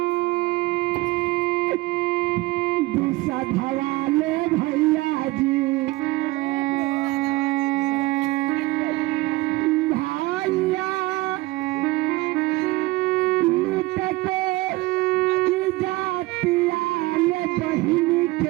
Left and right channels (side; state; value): left; quieter; 20.2 dB